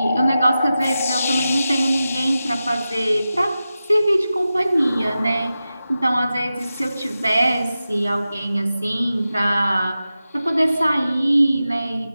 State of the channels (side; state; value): both; inverted; correlation -0.93